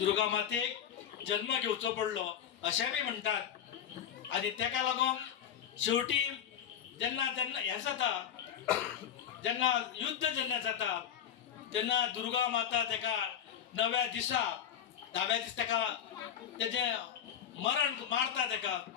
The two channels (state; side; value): quieter; right; 9.2 dB